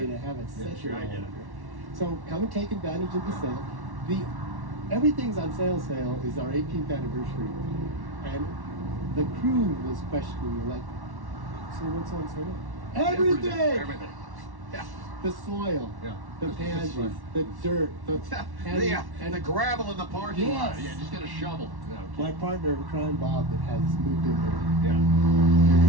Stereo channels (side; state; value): left; late; 1.1 ms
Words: to have it set. Sure, I get it. So come and take advantage of the sale. Everything's on sale is our 18th anniversary. And the crew was questioning me like, so what's on sale? Everything! Everything. Yeah. The soil, Yeah. the pansies, the dirt, And the gravel in the parking lot. Yes. Yeah, just get a shovel. Yeah, okay. my partner in crime, Bob, that has moved in there. Yeah.